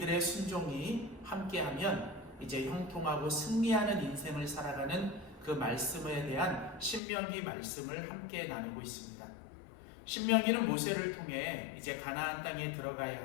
순종이 함께하면 이제 형통하고 승리하는 인생을 살아가는 그 말씀에 대한 신명기 말씀을 함께 나누고 있습니다. 신명기는 모세를 통해 이제 가나안 땅에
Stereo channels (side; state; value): right; drops out; at 7.0 s